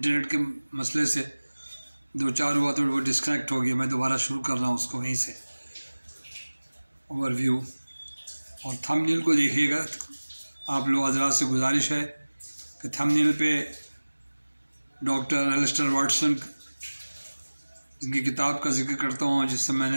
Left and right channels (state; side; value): inverted; both; correlation -1.00